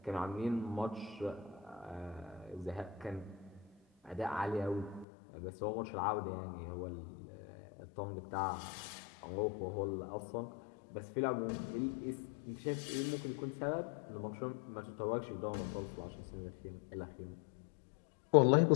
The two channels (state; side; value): drops out; right; at 5.1 s